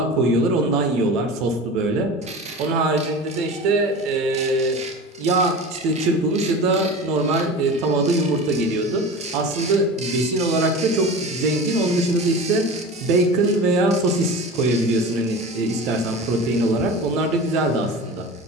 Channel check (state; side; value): normal; both; correlation 0.33